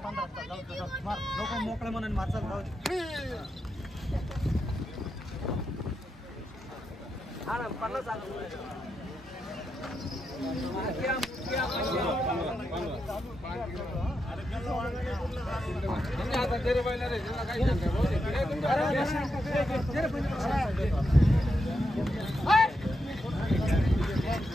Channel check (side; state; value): both; normal; correlation 0.85